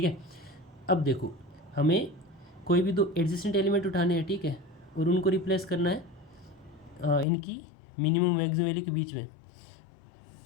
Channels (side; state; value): right; drops out; at 7.2 s